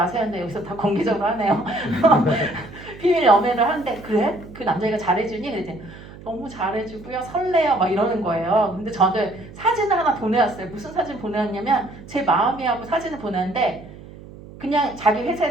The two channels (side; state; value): right; noise; hum, 17 dB below the sound